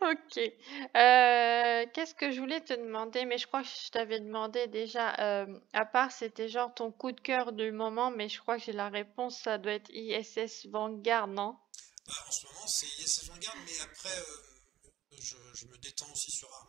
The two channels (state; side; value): quieter; left; 13.3 dB